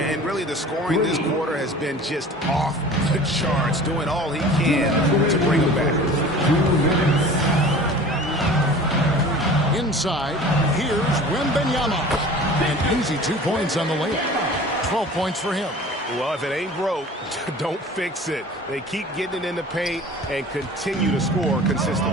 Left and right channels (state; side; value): normal; both; correlation 0.42